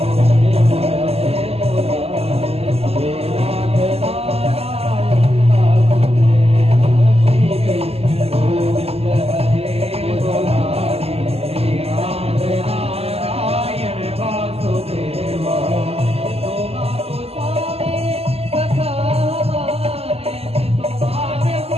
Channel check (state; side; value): late; left; 0.29 ms